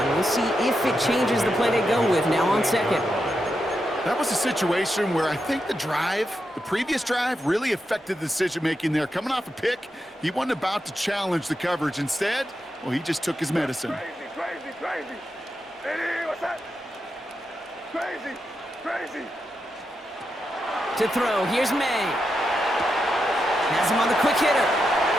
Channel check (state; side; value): normal; both; correlation 0.86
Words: We'll see if it changes the play they go with now on second. That was a situation where I think the previous drive, really affected the decision-making there. Coming off a pick, he wasn't about to challenge the coverage. Instead, well, he just took his medicine. Crazy. Hey, what's that? Crazy. To throw, here's May. Has him on the quick hitter.